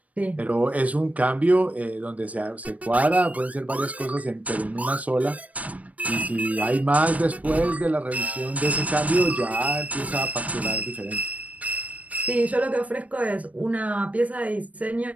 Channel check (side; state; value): left; late; 0.068 ms